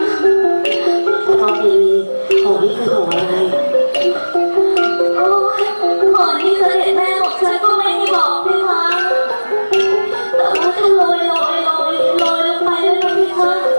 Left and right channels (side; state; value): both; inverted; correlation -1.00